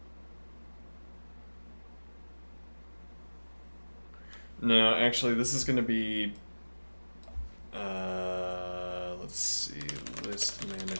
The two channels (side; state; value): both; inverted; correlation -1.00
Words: no, actually this is going to be let's see, list